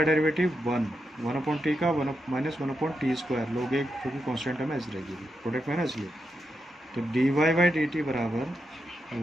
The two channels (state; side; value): normal; both; correlation 0.85